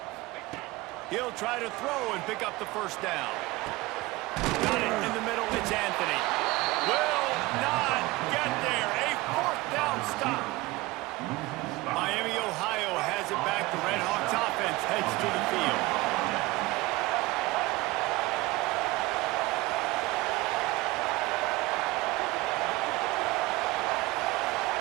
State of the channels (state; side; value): quieter; left; 20.8 dB